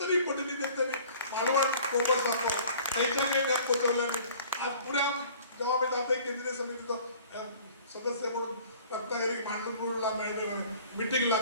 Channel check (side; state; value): both; inverted; correlation -0.50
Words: पटीने त्यांनी मालवण कोपर सांगतो त्यांच्या काही नाही पोचवलं. आज पुऱ्या जेव्हा मी जाते केंद्रीय समितीचं सदस्य म्हणून रत्नागिरी मांडूरला मिटिंगला